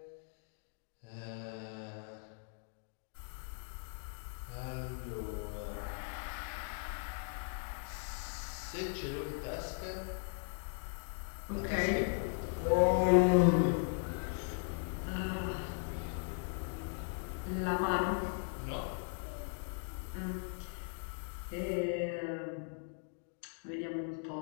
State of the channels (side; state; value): right; silent; 52 dB below the other